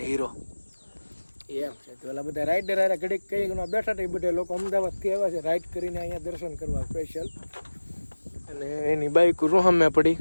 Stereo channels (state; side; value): inverted; both; correlation -1.00